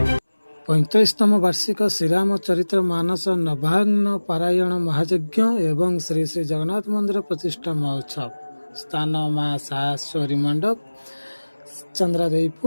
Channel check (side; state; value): both; inverted; correlation -1.00